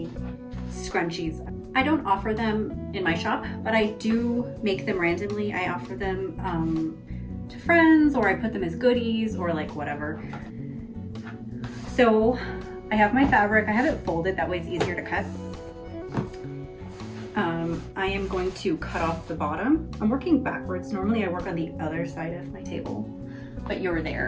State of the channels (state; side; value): identical; both; correlation 1.00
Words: scrunchies. I don't offer them in my shop, but I do make them randomly. I offer them to friends, or I put them as goodies, or like whatever. So I have my fabric. I have it folded, that way it's easier to cut. I am going to cut off the bottom. I'm working backwards. Normally I work on the other side of my table, but you're